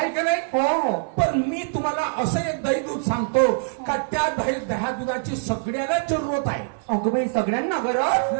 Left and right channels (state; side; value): silent; left; 60 dB below the other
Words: का नाही? हो हो. पण मी तुम्हाला असं एक दही दूध सांगतो का त्या दह्या दुधाची सगळ्याला जरूरत आहे. अगं बाई सगळ्यांना गरज.